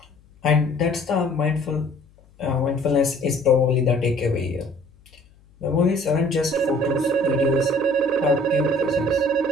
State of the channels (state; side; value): noise; left; hum, 29 dB below the sound